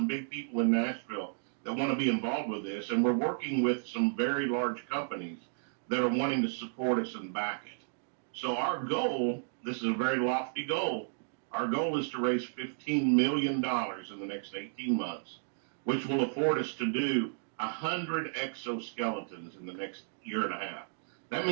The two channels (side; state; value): left; silent; digital silence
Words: big people in Nashville that want to be involved with this. And we're working with some very large companies that are wanting to support us and back it. So our goal, this is a very lofty goal, our goal is to raise $15 million in the next 18 months, which will afford us to do 100 exoskeletons in the next year and a half. That